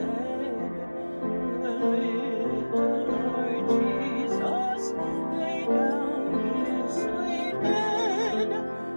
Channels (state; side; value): inverted; both; correlation -1.00